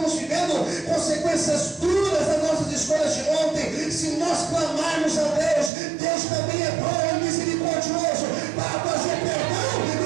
vivendo consequências duras das nossas escolhas de ontem, se nós clamarmos a Deus, Deus também é bom e misericordioso para trazer perdão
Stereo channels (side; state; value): left; drops out; at 5.7 s